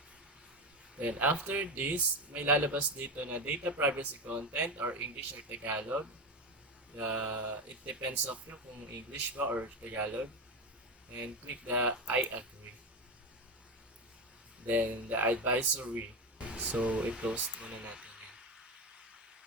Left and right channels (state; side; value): normal; both; correlation 0.18